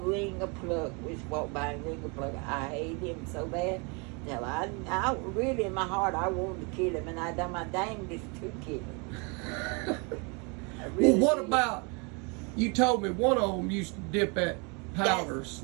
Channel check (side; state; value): left; quieter; 32.1 dB